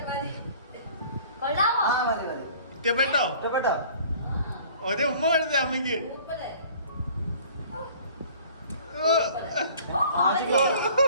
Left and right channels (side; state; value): both; inverted; correlation -0.50